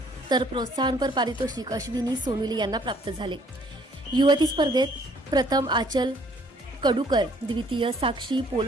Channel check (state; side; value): normal; both; correlation 0.61